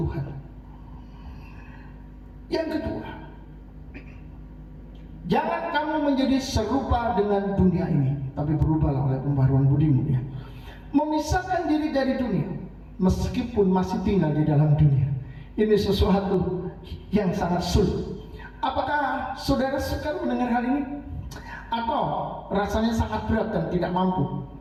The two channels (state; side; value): identical; both; correlation 1.00